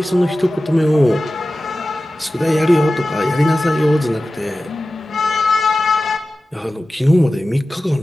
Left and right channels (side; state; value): both; normal; correlation 0.95